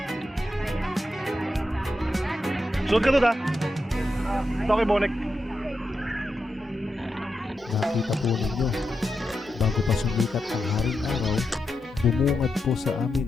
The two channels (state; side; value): normal; both; correlation 0.87